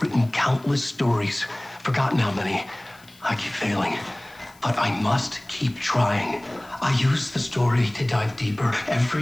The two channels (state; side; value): noise; left; hiss, 27 dB below the sound